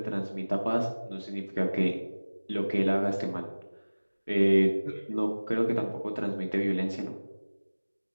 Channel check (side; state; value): both; inverted; correlation -1.00